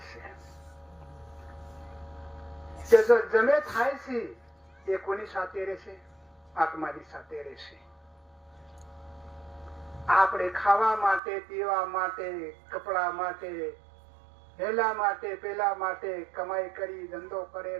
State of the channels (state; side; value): drops out; left; at 11.2 s